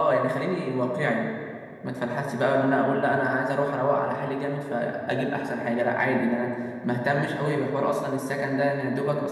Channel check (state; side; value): identical; both; correlation 1.00